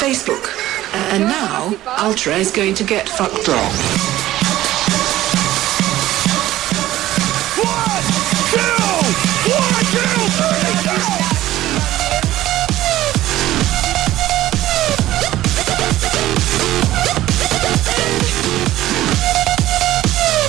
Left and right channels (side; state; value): left; quieter; 15.0 dB